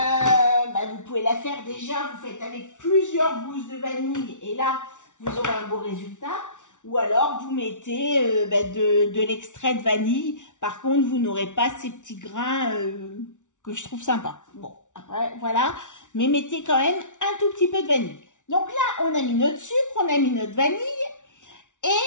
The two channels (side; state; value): right; late; 0.86 ms